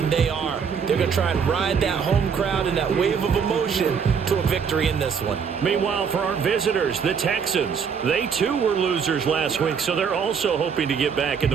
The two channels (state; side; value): quieter; left; 6.5 dB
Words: they are. They're going to try and ride that home crowd and that wave of emotion to a victory in this one. Meanwhile, for our visitors, the Texans, they too were losers last week, so they're also hoping to get back in